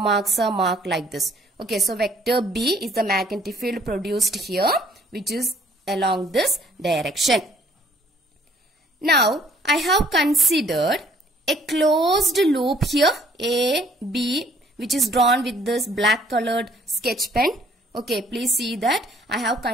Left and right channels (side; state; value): both; normal; correlation 0.60